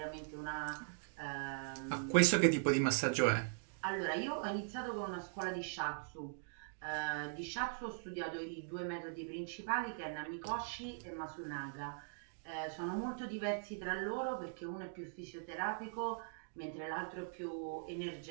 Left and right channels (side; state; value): left; silent; digital silence